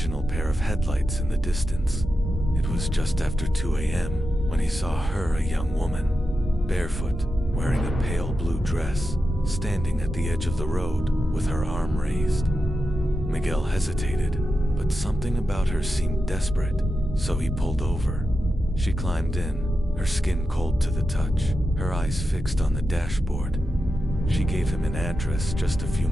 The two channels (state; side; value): normal; both; correlation 0.90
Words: pair of headlights in the distance. It was just after 2 a.m. when he saw her, a young woman, barefoot, wearing a pale blue dress, standing at the edge of the road with her arm raised. Miguel hesitated, but something about her seemed desperate, so he pulled over. She climbed in, her skin cold to the touch, her eyes fixed on the dashboard. She gave him an address just a few